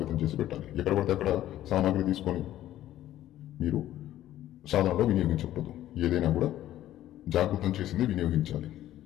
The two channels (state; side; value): quieter; right; 13.2 dB